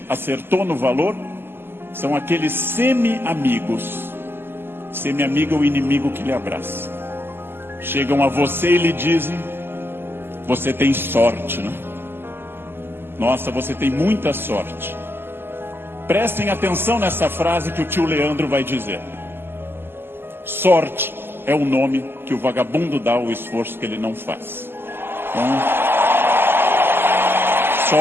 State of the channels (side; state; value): left; late; 0.11 ms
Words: acertou no valor? São aqueles semi-amigos. Semi-amigo é o inimigo que lhe abraça. Chegam a você e lhe dizem: você tem sorte, né? Nossa, você tem muita sorte. Prestem atenção nessa frase que o tio Leandro vai dizer. Sorte é o nome que o vagabundo dá ao esforço que ele não faz. Então,